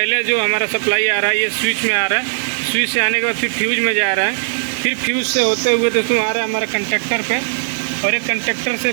जो हमारा सप्लाई आ रहा है ये स्विच में आ रहा है, स्विच से आने के बाद फिर फ्यूज में जा रहा है, फिर फ्यूज से होते हुए दोस्तों आ रहा है हमारा कंडक्टर पे और एक कंडक्टर से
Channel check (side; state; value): left; silent; digital silence